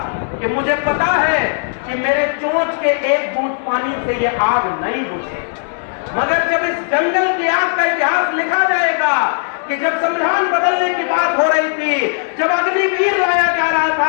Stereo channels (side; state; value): right; silent; 68 dB below the other